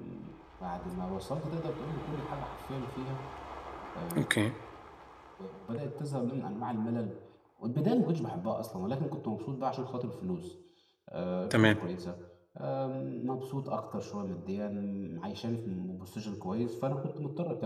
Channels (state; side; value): identical; both; correlation 1.00